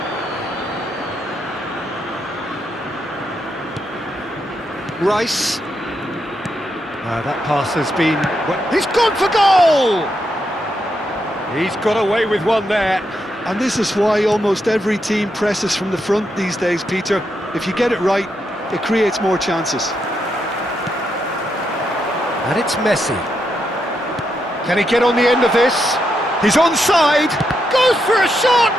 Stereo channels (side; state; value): both; normal; correlation 0.82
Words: Rice. That pass has been... He's gone for goal! He's got away with one there. And this is why almost every team presses from the front these days, Peter. If you get it right, it creates more chances. And it's Messi. Can he get on the end of this? He's onside! Goes for a